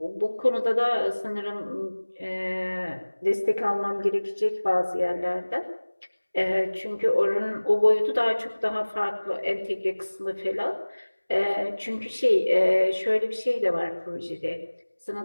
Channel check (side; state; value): both; inverted; correlation -1.00